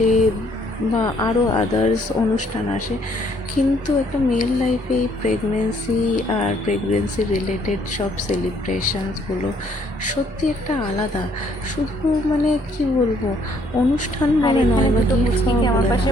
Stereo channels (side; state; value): both; normal; correlation 0.66